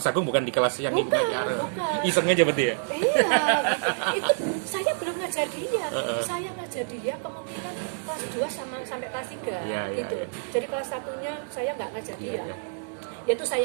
Agung bukan di kelas yang bukan. Iseng aja berarti ya? Iya, itu saya belum ngajar dia. Saya ngajar dia kemungkinan kelas 2 sampai kelas 3 gitu. Jadi kelas 1-nya saya nggak ngajar dia. Yaitu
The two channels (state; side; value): silent; left; digital silence